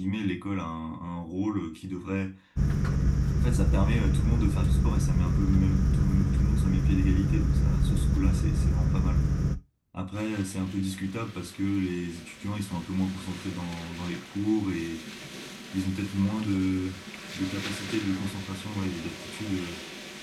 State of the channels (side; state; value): both; identical; correlation 1.00